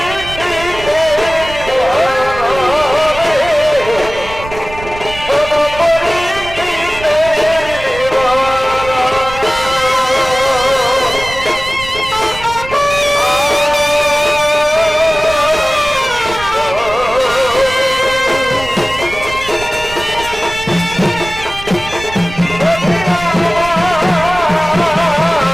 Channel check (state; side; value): noise; right; rumble, 13 dB below the sound